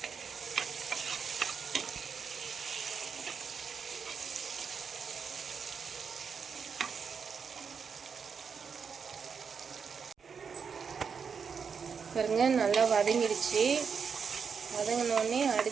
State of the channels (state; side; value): quieter; left; 6.1 dB